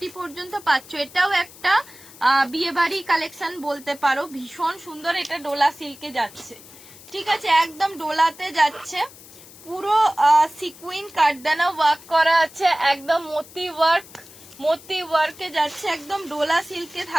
পর্যন্ত পাচ্ছ। এটাও একটা বিয়ে বাড়ি কালেকশন বলতে পারো, ভীষণ সুন্দর। এটা ডোলা সিল্কে যাচ্ছে, ঠিক আছে, একদম ডোলাতে যাচ্ছে, পুরো সিকুইন কাটদানা ওয়ার্ক করা আছে, একদম মোতি ওয়ার্কে যাচ্ছে, একদম ডোলা সিল্কে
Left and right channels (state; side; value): noise; left; hiss, 20 dB below the sound